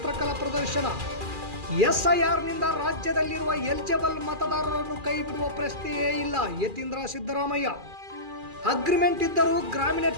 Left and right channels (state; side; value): late; left; 2.4 ms